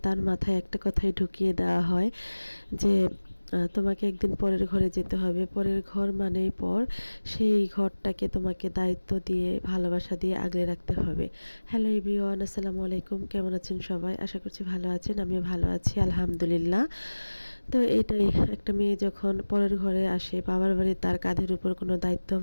তার মাথায় একটা কথাই ঢুকিয়ে দেওয়া হয় যে তোমাকে একদিন পরের ঘরে যেতে হবে। পরের ঘর মানেই পর। সেই ঘরটাকে তোমাকে দায়িত্ব দিয়ে, ভালোবাসা দিয়ে আগলে রাখতে হবে। হ্যালো এভরিওয়ান, আসসালামু আলাইকুম। কেমন আছেন সবাই? আশা করছি ভালো আছেন। আমিও ভালো আছি, আলহামদুলিল্লাহ। তো এটাই, একটা মেয়ে যখন পরের ঘরে আসে, বাবার বাড়ি তার কাঁধের উপর কোনো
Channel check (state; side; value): inverted; both; correlation -1.00